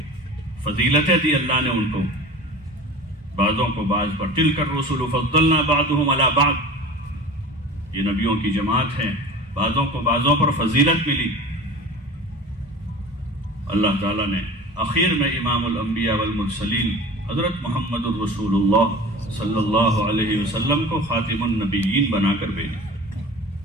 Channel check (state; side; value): normal; both; correlation 0.38